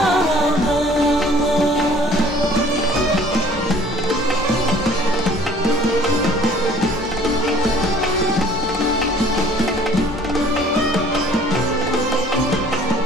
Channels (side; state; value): both; normal; correlation 0.53